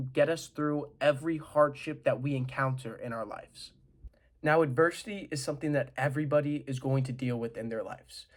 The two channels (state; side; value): identical; both; correlation 1.00